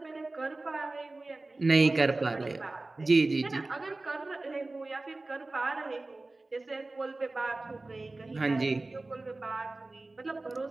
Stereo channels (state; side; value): quieter; left; 3.1 dB